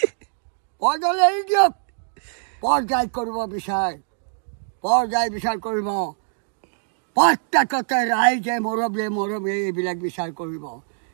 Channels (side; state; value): left; silent; digital silence